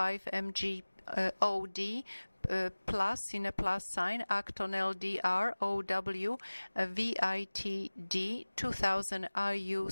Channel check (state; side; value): inverted; both; correlation -1.00